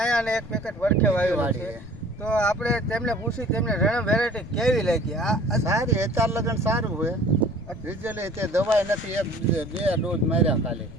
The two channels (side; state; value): left; noise; rumble, 16 dB below the sound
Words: આયા અને એક પેકેટ વડખે વાવેલું છે. તો આપણે તેમને પૂછી તેમને રણમ વેરાયટી કેવી લાગી? સારી, અત્યાર લગન સારું હોય. રિઝલ્ટ તે દવાઈ નથી, બે ડોઝ માર્યા ખાલી.